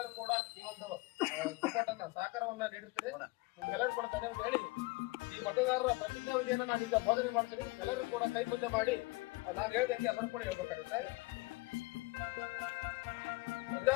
ಕೂಡ ಈ ಒಂದು ಸಪೋರ್ಟ್ ಅನ್ನ ಸಹಕಾರವನ್ನ ನೀಡುತ್ತೀರಿ. ನಿಮ್ಗೆಲ್ಲರೂ ಕೂಡ ಧನ್ಯವಾದ ಹೇಳಿ ಈ ಮತದಾರರ ಪ್ರತಿಜ್ಞಾ ವಿಧಿಯನ್ನ ನಾನು ಈಗ ಬೋಧನೆ ಮಾಡ್ತೀನಿ. ಎಲ್ಲರೂ ಕೂಡ ಕೈ ಮುಂದೆ ಮಾಡಿ ನಾನು ಹೇಳ್ದಂಗೆ ಎಲ್ಲರೂ ಕೂಡ ಹೇಳ್ಬೇಕಾಗುತ್ತೆ.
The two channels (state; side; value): quieter; right; 24.3 dB